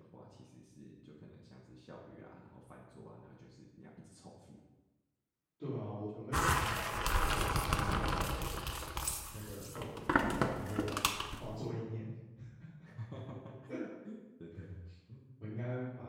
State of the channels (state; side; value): identical; both; correlation 1.00